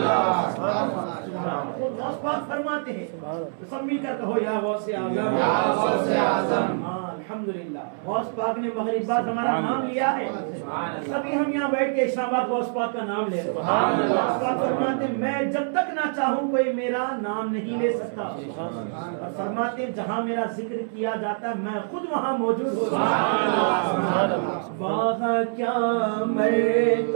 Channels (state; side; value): silent; left; 62 dB below the other